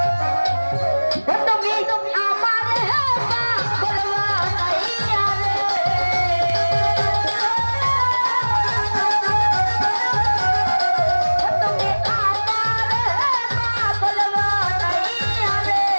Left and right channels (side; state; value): both; inverted; correlation -1.00